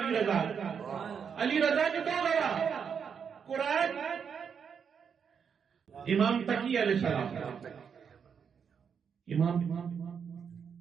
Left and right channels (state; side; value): quieter; left; 6.9 dB